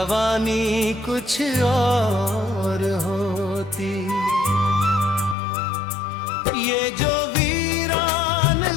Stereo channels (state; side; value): drops out; right; at 5.4 s